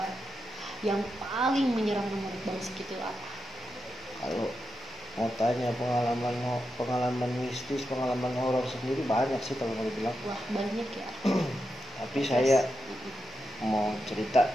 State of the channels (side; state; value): both; normal; correlation 0.87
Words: yang paling menyeramkan menurut Bang Sigit itu apa? Kalau mau tanya pengalaman mistis, pengalaman horor sendiri banyak sih kalau mau dibilang. Wah, banyak ya. Tapi saya mau cerita